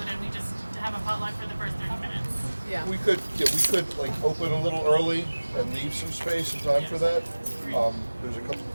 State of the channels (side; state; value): both; inverted; correlation -1.00